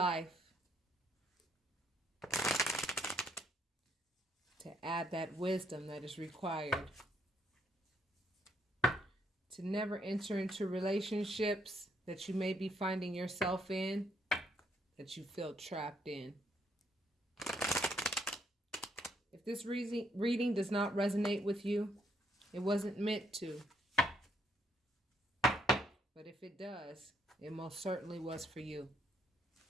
to add that wisdom that is required, to never enter into relationships that you may be finding yourself in, that you feel trapped in. If this reading does not resonate with you, it wasn't meant to. But if it does, it most certainly was for you.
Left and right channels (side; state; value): both; normal; correlation 0.72